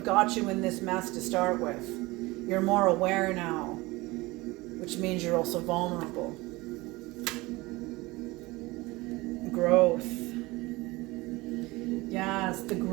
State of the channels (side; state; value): left; quieter; 21.7 dB